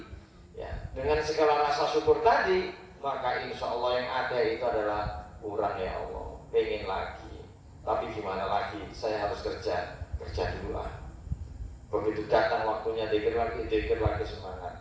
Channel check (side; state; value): both; identical; correlation 1.00